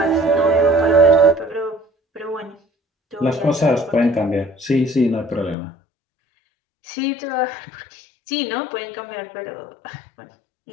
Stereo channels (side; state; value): right; drops out; at 5.6 s